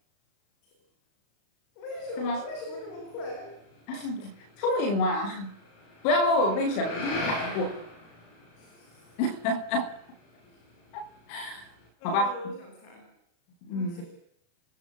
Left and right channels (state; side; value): late; right; 35 ms